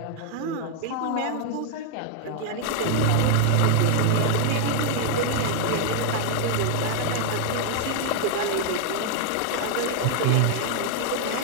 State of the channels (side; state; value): both; different; correlation 0.00